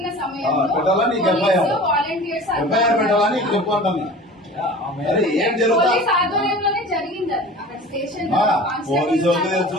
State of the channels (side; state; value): both; normal; correlation 0.40